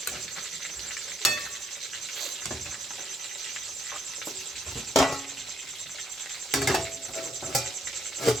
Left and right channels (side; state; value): both; normal; correlation 0.72